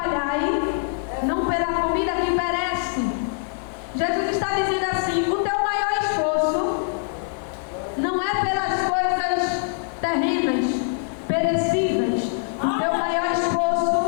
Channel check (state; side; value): silent; right; 58 dB below the other